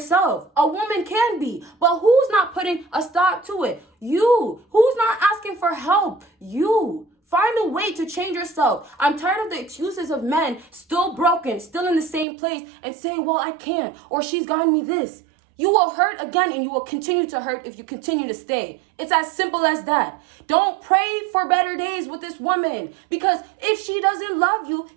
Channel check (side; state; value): left; drops out; at 12.2 s